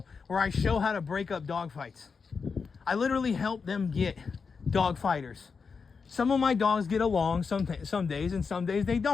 where I show how to break up dog fights. I literally help them get dog fighters. Some of my dogs get along some days, and some days they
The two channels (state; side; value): quieter; right; 5.3 dB